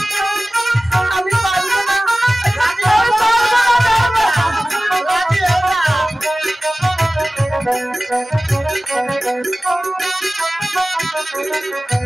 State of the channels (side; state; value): both; normal; correlation 0.97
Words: আমি পারবো না